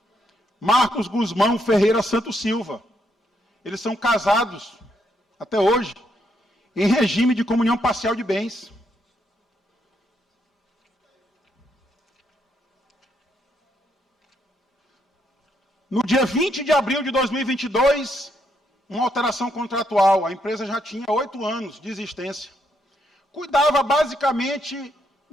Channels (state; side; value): normal; both; correlation 0.76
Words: Marcos Guzmão Ferreira Santos Silva. Eles são casados, até hoje, em regime de comunhão parcial de bens. No dia 20 de abril de 2022, uma alteração contratual. A empresa já tinha 8 anos de existência. Cuidava basicamente